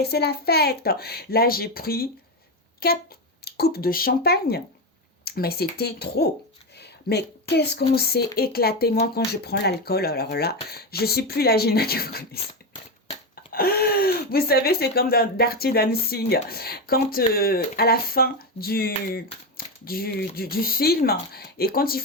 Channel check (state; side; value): normal; both; correlation 0.13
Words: c'est la fête. Là, j'ai pris 4 coupes de champagne, mais c'était trop. Mais qu'est-ce qu'on s'est éclaté, moi, quand je prends l'alcool. Alors là, je suis plus la Gina que vous connaissez. Vous savez, c'est comme dans Dirty Dancing. Quand, à la fin du film, et quand ils